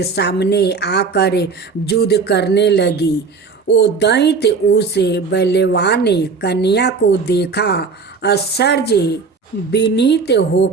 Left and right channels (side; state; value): left; quieter; 4.8 dB